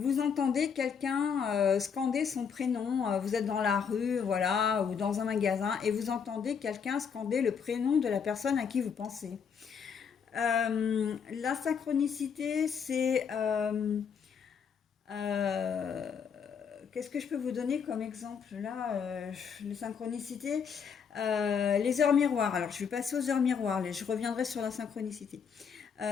entendez quelqu'un scander son prénom, vous êtes dans la rue, voilà, ou dans un magasin, et vous entendez quelqu'un scander le prénom de la personne à qui vous pensez. La synchronicité, c'est... qu'est-ce que je peux vous donner comme exemple là, les synchronicités, les heures miroirs. Alors, je vais passer aux heures miroirs, je reviendrai sur la synchronicité.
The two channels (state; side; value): quieter; right; 6.7 dB